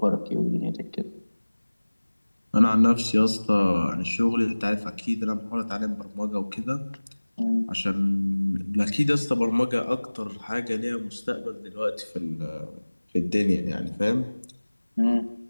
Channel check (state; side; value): inverted; both; correlation -1.00